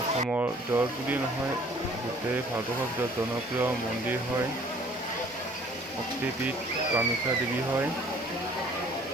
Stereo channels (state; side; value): normal; both; correlation 0.55